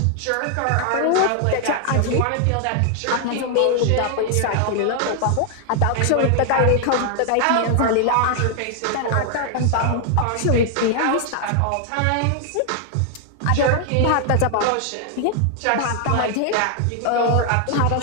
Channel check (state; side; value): different; both; correlation 0.00